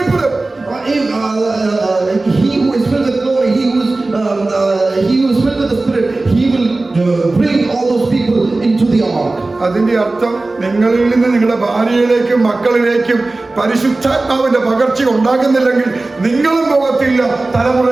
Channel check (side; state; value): left; quieter; 3.2 dB